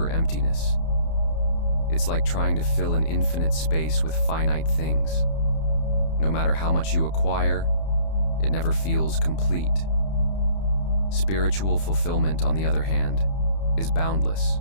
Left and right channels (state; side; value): late; right; 31 ms